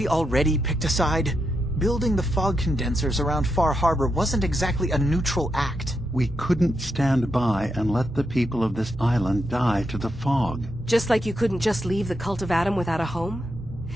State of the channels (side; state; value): both; normal; correlation 0.83